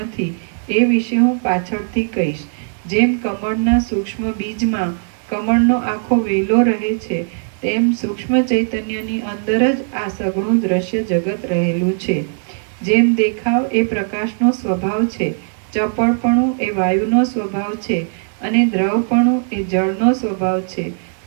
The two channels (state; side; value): silent; left; digital silence